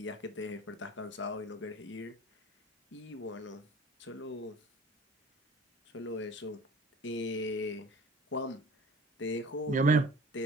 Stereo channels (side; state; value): both; normal; correlation 0.45